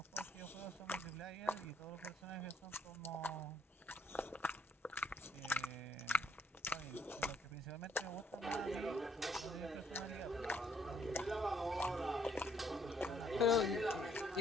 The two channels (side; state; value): both; normal; correlation 0.67